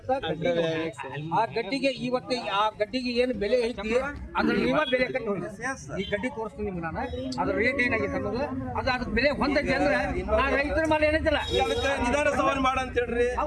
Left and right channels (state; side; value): identical; both; correlation 1.00